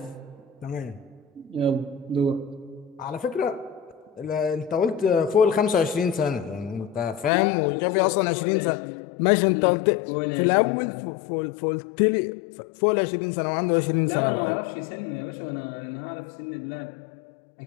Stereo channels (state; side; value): drops out; right; at 7.3 s